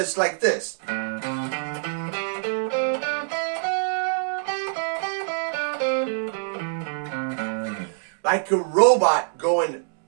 like this. Like a robot going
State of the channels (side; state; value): left; silent; 62 dB below the other